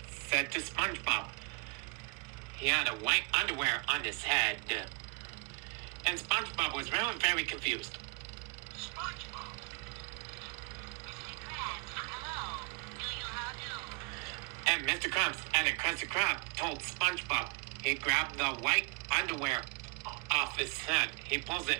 said to SpongeBob, he had a white underwear on his head. And SpongeBob was really very confused. SpongeBob? And Mr. Krabs and the Krusty Krab told SpongeBob he grabbed the white underwear off his head. He pulls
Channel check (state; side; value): quieter; left; 33.4 dB